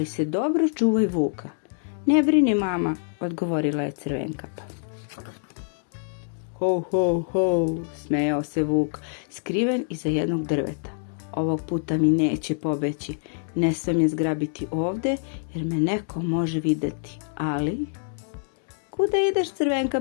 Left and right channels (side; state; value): right; silent; digital silence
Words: se dobro čuvaj vuka. Ne brini, mama, odgovorila je Crvenkapa. Ho, ho, ho, smejao se vuk, skriven iza jednog drveta. Ovog puta mi neće pobeći, ne smem je zgrabiti ovde, jer me neko može videti, ali... Kuda ideš,